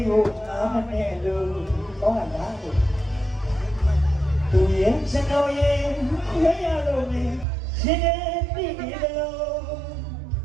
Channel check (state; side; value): drops out; left; at 7.5 s